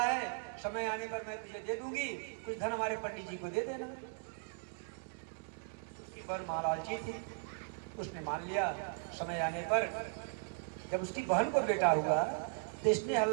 समय आने पर मैं तुझे दे दूंगी, कुछ धन हमारे पंडित जी को दे देना। उसकी बहन महालालची थी, उसने मान लिया। समय आने पर जब उसकी बहन को बेटा हुआ तो इसने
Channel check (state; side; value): silent; left; digital silence